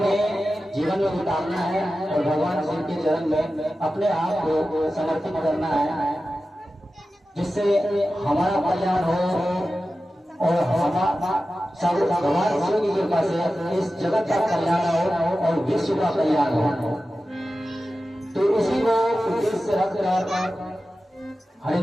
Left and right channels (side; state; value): both; normal; correlation 0.94